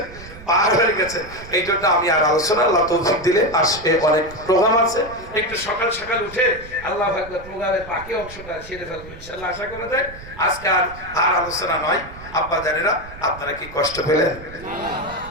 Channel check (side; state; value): right; noise; rumble, 16 dB below the sound